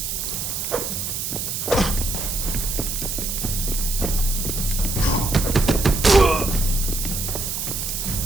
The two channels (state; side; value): noise; right; hiss, 3 dB below the sound